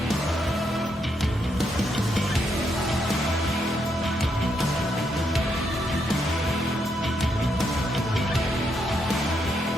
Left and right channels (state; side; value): normal; both; correlation 0.79